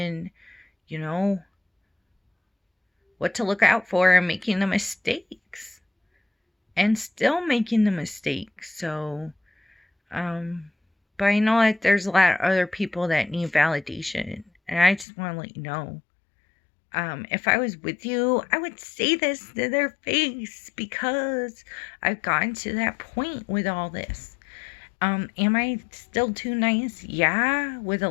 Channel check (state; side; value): drops out; right; at 15.1 s